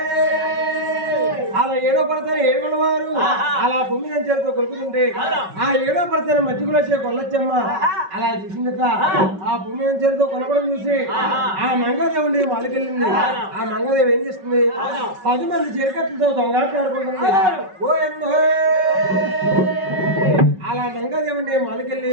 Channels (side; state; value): left; late; 5.3 ms